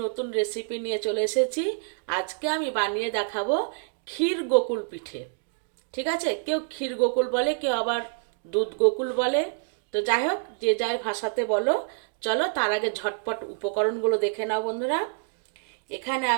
নতুন রেসিপি নিয়ে চলে এসেছি। আজকে আমি বানিয়ে দেখাবো ক্ষীর গোকুল পিঠে। ঠিক আছে, কেউ ক্ষীর গোকুল বলে, কেউ আবার দুধ গোকুল বলে। তো যাই হোক, যে যাই ভাষাতে বলো। চলো তার আগে ঝটপট উপকরণগুলো দেখে নাও বন্ধুরা। এখানে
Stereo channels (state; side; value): silent; left; digital silence